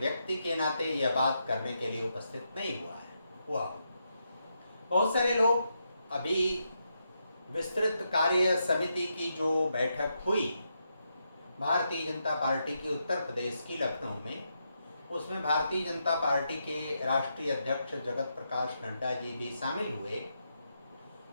के नाते यह बात करने के लिए उपस्थित नहीं हुआ। बहुत सारे लोग अभी विस्तृत कार्य समिति की जो बैठक हुई भारतीय जनता पार्टी की उत्तर प्रदेश की लखनऊ में, उसमें भारतीय जनता पार्टी के राष्ट्रीय अध्यक्ष जगत प्रकाश नड्डा जी भी शामिल हुए।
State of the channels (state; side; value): inverted; both; correlation -0.83